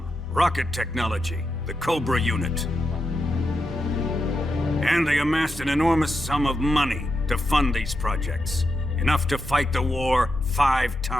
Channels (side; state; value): both; normal; correlation 0.86